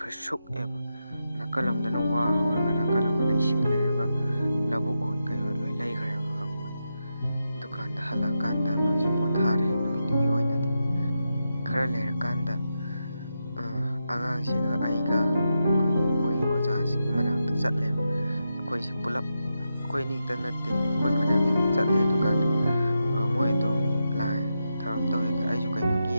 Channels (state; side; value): inverted; both; correlation -0.87